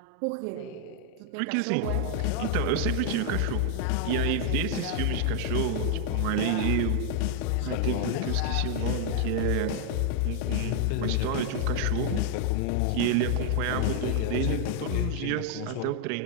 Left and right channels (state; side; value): different; both; correlation 0.00